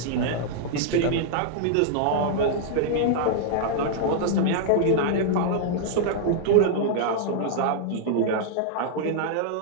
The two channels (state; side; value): different; both; correlation -0.01